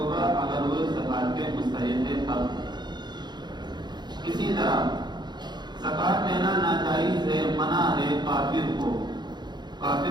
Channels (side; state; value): left; late; 0.21 ms